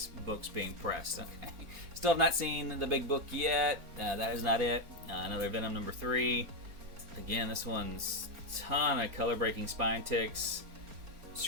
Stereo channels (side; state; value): left; late; 4.4 ms